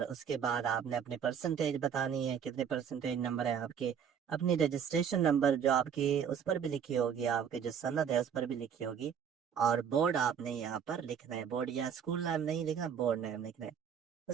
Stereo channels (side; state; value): left; quieter; 7.8 dB